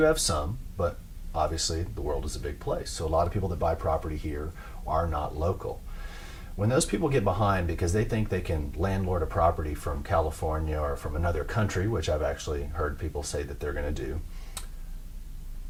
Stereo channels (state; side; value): identical; both; correlation 1.00